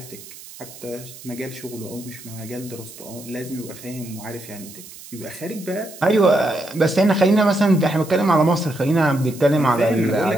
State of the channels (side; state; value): right; noise; hiss, 17 dB below the sound